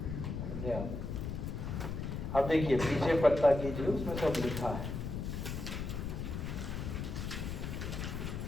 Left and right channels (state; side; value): noise; left; rumble, 4 dB below the sound